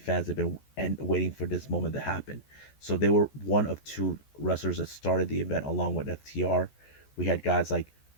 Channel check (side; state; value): right; late; 14 ms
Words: that have been waiting for this moment to happen. So they were one of two wrestlers that started the event along with FTR. We had guys like